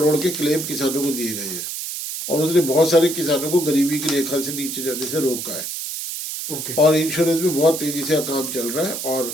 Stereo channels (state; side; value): noise; right; hiss, 6 dB below the sound